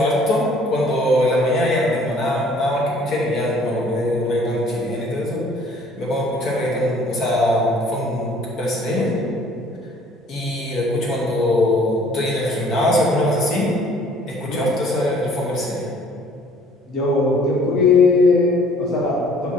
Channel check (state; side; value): normal; both; correlation 0.56